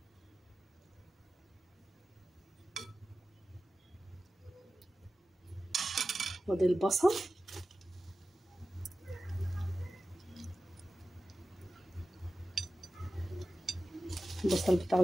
وادي البصل، البصل بتاعه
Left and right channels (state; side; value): normal; both; correlation 0.94